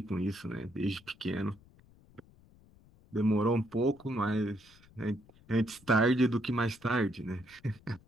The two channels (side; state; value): left; noise; rumble, 26 dB below the sound